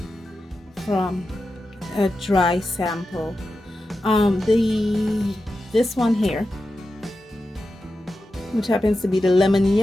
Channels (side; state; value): both; normal; correlation 0.91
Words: from a dry sample. This one here, which happens to be the lemon